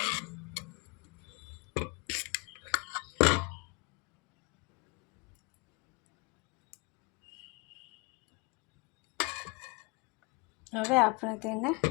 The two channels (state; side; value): quieter; right; 27.6 dB